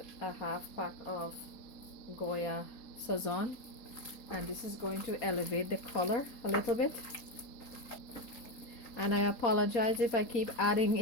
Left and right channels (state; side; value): late; right; 3.9 ms